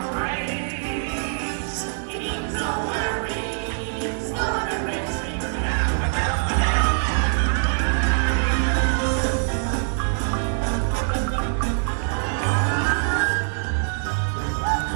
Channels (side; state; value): left; silent; digital silence